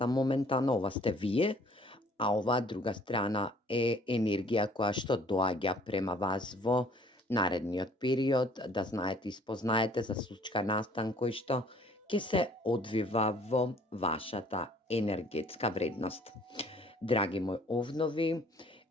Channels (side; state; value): both; normal; correlation 0.56